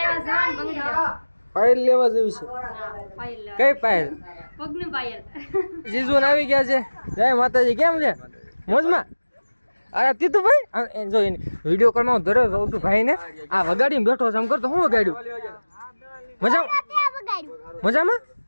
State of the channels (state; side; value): inverted; both; correlation -1.00